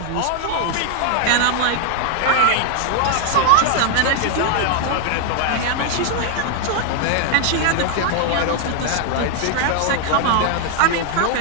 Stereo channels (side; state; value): both; different; correlation 0.00